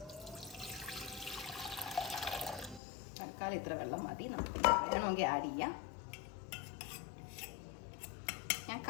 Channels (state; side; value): drops out; right; at 2.8 s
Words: തൽക്കാലം ഇത്ര വെള്ളം മതി. നമുക്ക് വേണമെങ്കിൽ ആഡ് ചെയ്യാം. ഞാൻ